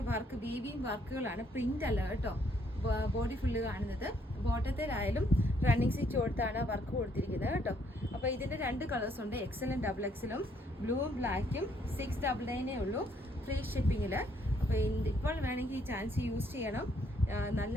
വർക്ക്, വീവിങ് വർക്കുകളാണ്, പ്രിന്റ് അല്ല കേട്ടോ. ബോഡി ഫുള്ള് കാണുന്നത്. ബോട്ടത്തിലായാലും റണ്ണിങ് സ്റ്റിച്ച് കൊടുത്താണ് വർക്ക് കൊടുത്തിരിക്കുന്നത് കേട്ടോ. അപ്പോൾ ഇതിൻ്റെ 2 കളേഴ്സ് ഉണ്ട്, XLും XXLും. ബ്ലൂവും ബ്ലാക്കും 699 ഉള്ളൂ ഫ്രീ ഷിപ്പിങ്ങിൽ. അപ്പോൾ ഇപ്പോൾ വേണമെങ്കിൽ ഈ ചാൻസ് യൂസ് ചെയ്യണം. നല്ല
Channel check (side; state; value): both; normal; correlation 0.69